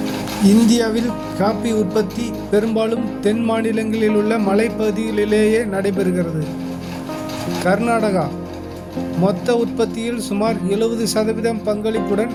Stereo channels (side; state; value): both; identical; correlation 1.00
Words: இந்தியாவில் காபி உற்பத்தி பெரும்பாலும் தென் மாநிலங்களில் உள்ள மலைப்பகுதிகளிலேயே நடைபெறுகிறது. கர்நாடகா மொத்த உற்பத்தியில் சுமார் 70% பங்களிப்புடன்